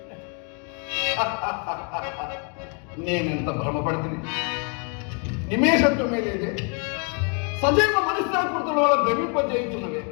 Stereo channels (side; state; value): right; quieter; 38.0 dB